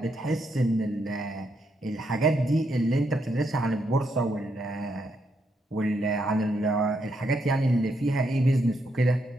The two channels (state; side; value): normal; both; correlation 0.78